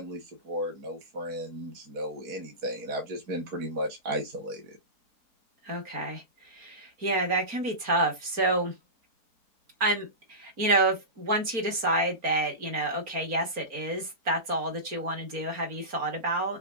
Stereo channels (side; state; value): left; late; 4.3 ms